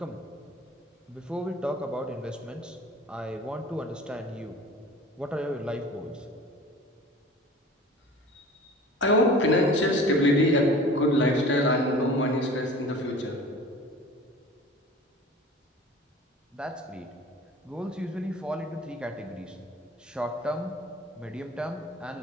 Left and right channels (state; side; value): normal; both; correlation 0.42